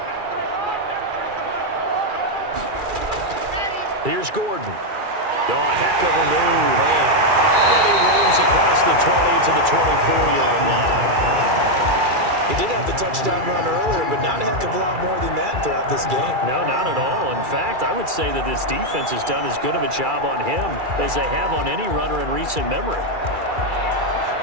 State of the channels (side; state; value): left; late; 2.4 ms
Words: Here's Gordon. Oh, a heck of a move. Man. And he roams across the 20 to the 24-yard line. He did have the touchdown run earlier, but not a heck of a lot more than that throughout this game. No, not at all. In fact, I would say that this defense has done as good of a job on him as they have on any runner in recent memory.